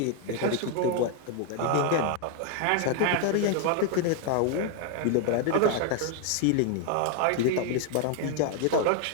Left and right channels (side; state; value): both; different; correlation 0.01